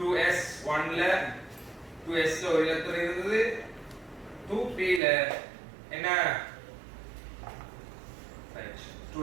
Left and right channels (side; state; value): left; drops out; at 5.0 s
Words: ல 2s ல ஒரு இலத்திரம் இருந்தது. 2p ல என்ன? ரைட்